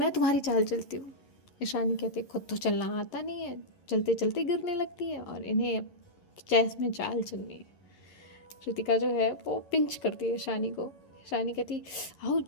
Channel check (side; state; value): right; late; 11 ms